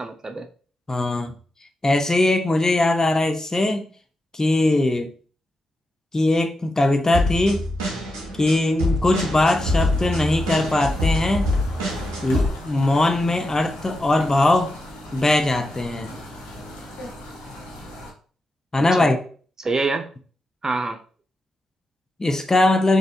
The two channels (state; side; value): normal; both; correlation 0.88